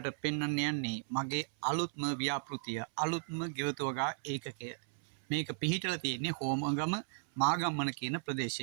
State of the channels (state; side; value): silent; left; 54 dB below the other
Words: පෙන්වන්න යන්නේ මගේ අලුත්ම ව්‍යාපෘතිය අලුත්ම ගෙවතුවගා ඒකකය මේක පිහිටලා තියෙන්නේ හෝමගම මාගම්මන කියන